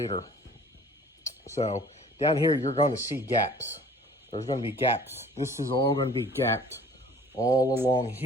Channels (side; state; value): both; normal; correlation 0.50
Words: So down here, you're going to see gaps. there's going to be gaps. This is all going to be gapped all along